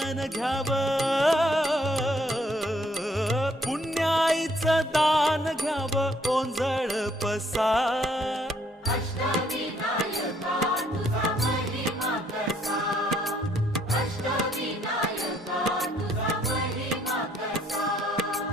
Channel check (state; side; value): normal; both; correlation 0.67